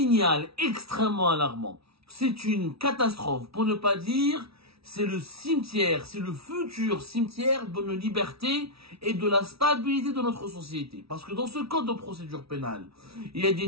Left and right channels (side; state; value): left; late; 0.76 ms